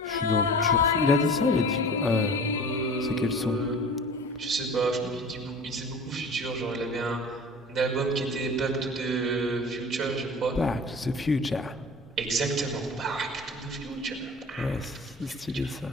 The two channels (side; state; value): both; normal; correlation 0.40